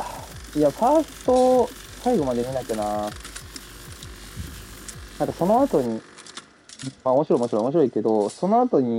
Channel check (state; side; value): identical; both; correlation 1.00